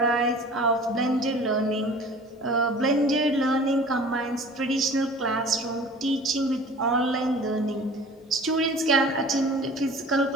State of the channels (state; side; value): normal; both; correlation 0.44